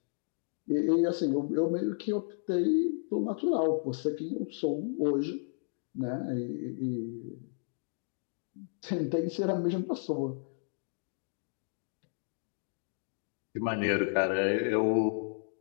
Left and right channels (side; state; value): right; silent; digital silence